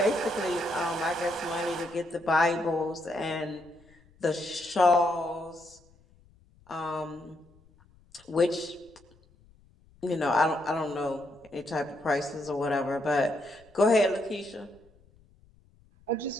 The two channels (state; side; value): noise; left; rumble, 29 dB below the sound